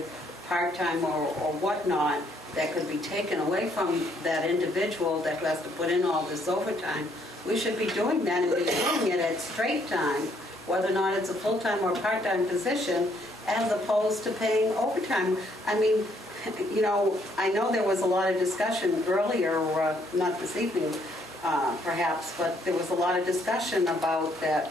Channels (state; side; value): normal; both; correlation 0.69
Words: part-time or whatnot, that could be taken away from that individual that has to put in all this overtime, we should be doing that and be doing it at straight time, whether or not it's a full-time or part-time position, as opposed to paying overtime. I mean, I know there was a lot of discussion earlier, not this evening perhaps, but there was a lot of discussion about that